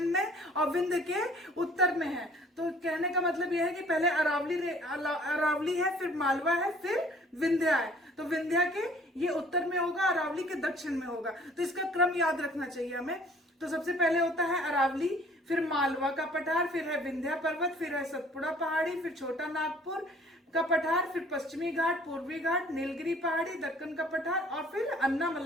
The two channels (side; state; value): both; normal; correlation 0.55